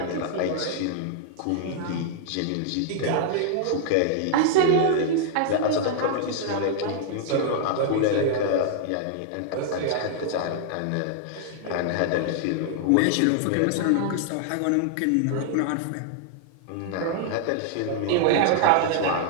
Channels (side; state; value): both; different; correlation -0.01